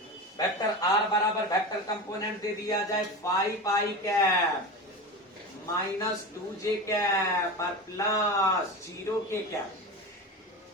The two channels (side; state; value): both; normal; correlation 0.26